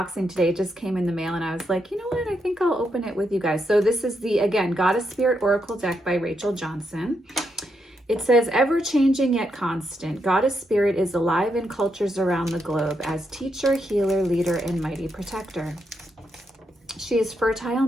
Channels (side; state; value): both; normal; correlation 0.81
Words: today. It just came in the mail and I was like, you know what? I think I'll open it with you guys. So this is the, again, Goddess Spirit Oracle deck by Rachel Johnson. It says, ever-changing yet constant, Goddess Spirit is alive in cultures around the globe as teacher, healer, leader, and mighty protector. She is fertile